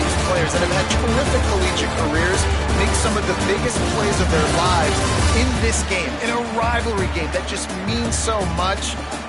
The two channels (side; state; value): both; identical; correlation 1.00